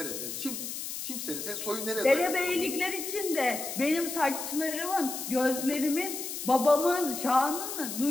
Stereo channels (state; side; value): noise; left; hiss, 6 dB below the sound